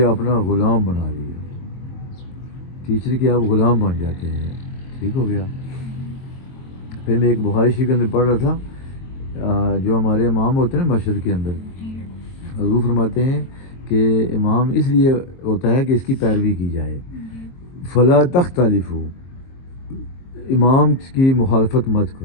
اپنا غلام بنا لیا. ٹیچر کے آپ غلام بن جاتے ہیں. ٹھیک ہو گیا. پھر میں ایک بخاری شریف کے اندر پڑھ رہا تھا جو ہمارے امام ہوتے ہیں نا مسجد کے اندر, حضور فرماتے ہیں کہ امام اس لیے ہوتا ہے کہ اس کی پیروی کی جائے. فلا تختلفوا, امام کی مخالفت مت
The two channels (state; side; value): late; right; 22 ms